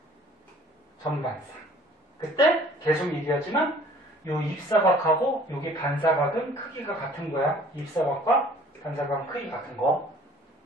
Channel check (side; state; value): both; normal; correlation 0.52